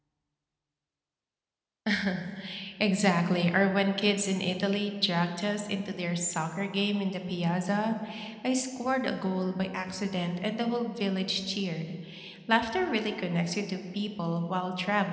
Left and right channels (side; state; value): both; identical; correlation 1.00